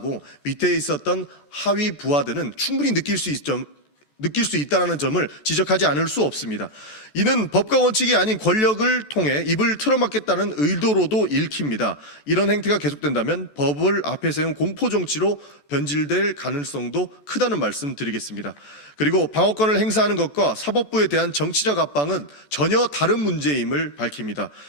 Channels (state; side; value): late; right; 14 ms